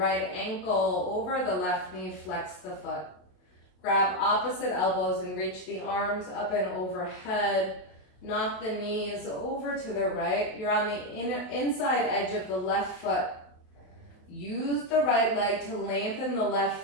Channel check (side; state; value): right; late; 28 ms